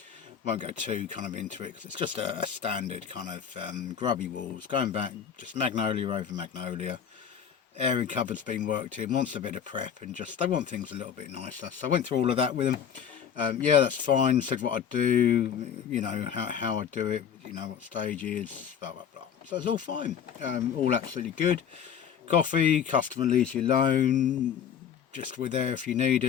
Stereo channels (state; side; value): quieter; right; 8.1 dB